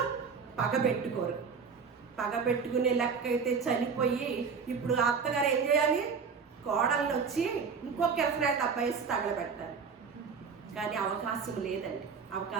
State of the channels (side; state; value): left; quieter; 5.7 dB